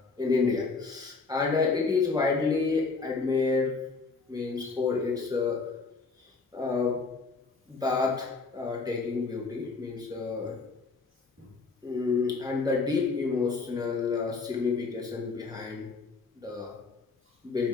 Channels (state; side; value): quieter; right; 4.3 dB